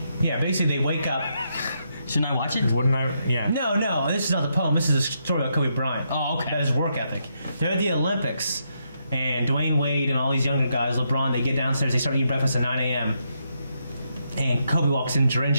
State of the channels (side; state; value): both; inverted; correlation -0.79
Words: yeah, basically they wake up. Shouldn't I watch it? Wouldn't I? Yeah. No, this is not the poem. This is a story about Kobe Bryant. Oh, okay. About his work ethic. They're at the Olympics, and Dwayne Wade and all these younger guys, LeBron, they get downstairs, they start eating breakfast at 9 a.m. And Kobe walks in